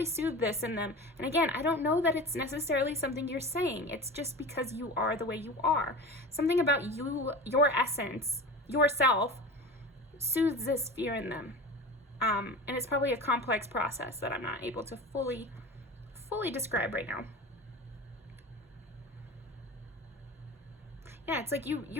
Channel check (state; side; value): normal; both; correlation 0.33